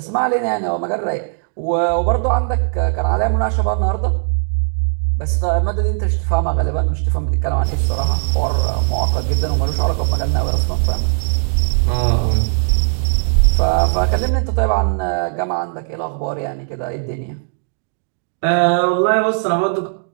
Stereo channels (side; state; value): left; silent; digital silence